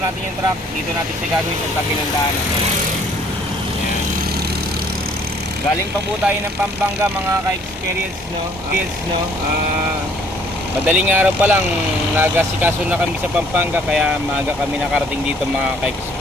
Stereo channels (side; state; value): both; normal; correlation 0.60